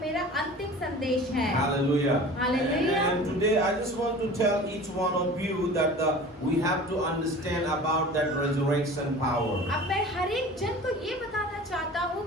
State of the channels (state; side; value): normal; both; correlation 0.40